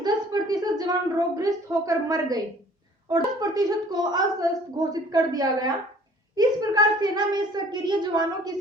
10% जवान रोगग्रस्त होकर मर गए और 10% को अस्वस्थ घोषित कर दिया गया। इस प्रकार सेना में सक्रिय जवानों की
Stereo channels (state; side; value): normal; both; correlation 0.53